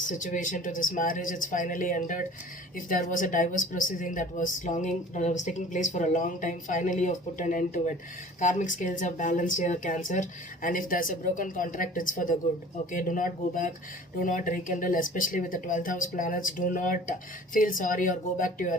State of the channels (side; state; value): both; normal; correlation 0.45